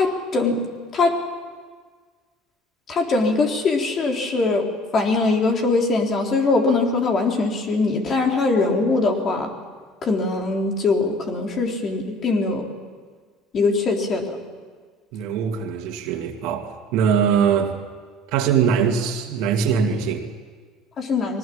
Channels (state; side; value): normal; both; correlation 0.48